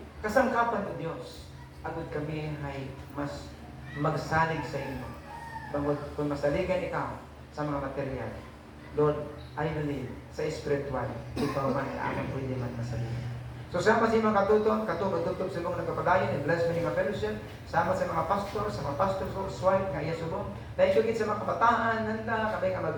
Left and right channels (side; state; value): both; identical; correlation 1.00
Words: kasangkapan ng Diyos. Agad kami ay mas magsalig sa imo. Bangod kung masaligan ikaw sa mga material. Lord, I believe sa spiritual, ikaw man ay amang pwede man masabihin. So sama sa mga katuton, katutog sa mga nagkapadayon, bless mo mga fellowship, sama sa mga pastor, sa mga pastor wife, nga iya subong. Dahil sugit sa mga kabataan, nanda, kabay nga